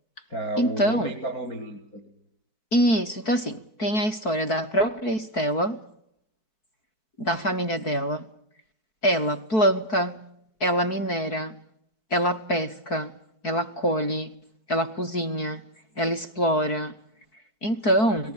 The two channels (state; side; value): late; right; 4.6 ms